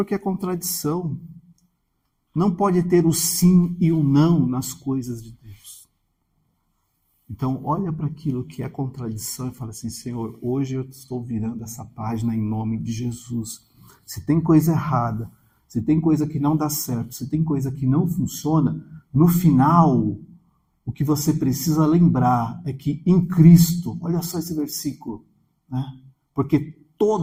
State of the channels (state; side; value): identical; both; correlation 1.00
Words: a contradição não pode ter o sim e o não nas coisas de Deus. Então, olha para aquilo que é contradição e fala assim, Senhor, hoje eu estou virando essa página em nome de Jesus. Se tem coisa errada, se tem coisa que não dá certo, se tem coisa que não funciona, no final, o que você precisa lembrar é que em Cristo, olha só esse versículo, né? Porque